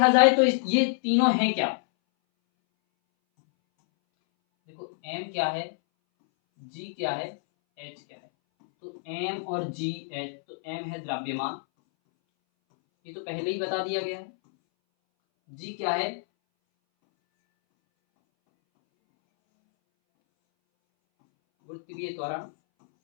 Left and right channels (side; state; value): right; silent; 60 dB below the other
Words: जाए तो ये तीनों हैं क्या? देखो m क्या है, g क्या है, h क्या है। तो m और g h, तो m है द्रव्यमान, ये तो पहले ही बता दिया गया है। g क्या है? गुरुत्वीय त्वरण।